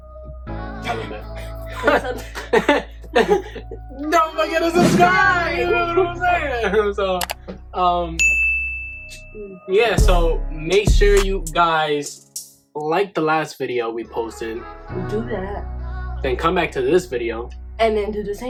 Tell them that. Don't forget to subscribe. You know what I'm saying? So, yeah. So make sure you guys like the last video we posted. Do that. Then come back to this video. And then do the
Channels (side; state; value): both; identical; correlation 1.00